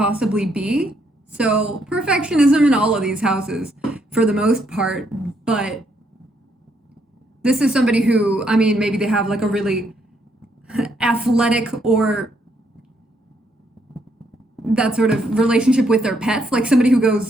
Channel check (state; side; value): normal; both; correlation 0.73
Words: be. So perfectionism in all of these houses for the most part, but this is somebody who, I mean, maybe they have like a really athletic or that sort of relationship with their pets, like somebody who